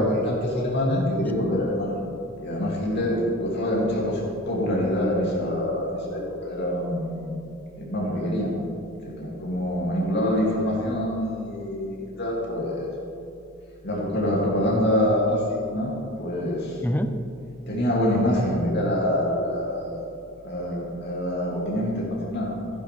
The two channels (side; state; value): both; normal; correlation 0.35